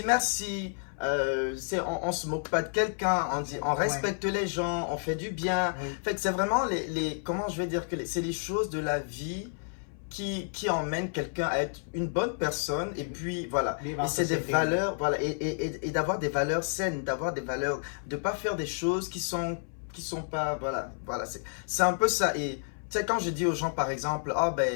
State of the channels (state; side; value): silent; right; 58 dB below the other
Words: merci, on se moque pas de quelqu'un, on respecte les gens, on fait du bien. Fait que c'est vraiment comment je vais dire que c'est les choses de la vie qui emmène quelqu'un à être une bonne personne et puis voilà, et c'est des valeurs, voilà, et d'avoir des valeurs saines, d'avoir des valeurs, de pas faire des choses qui sont pas, voilà, c'est un peu ça. Et tu Tu sais, quand je dis aux gens, par exemple, ah ben,